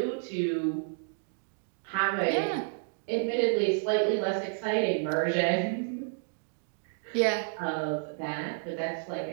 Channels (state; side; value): silent; left; digital silence